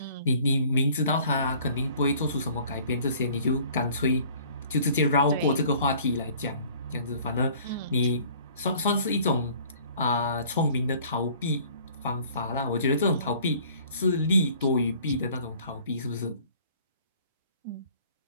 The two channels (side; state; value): both; inverted; correlation -0.53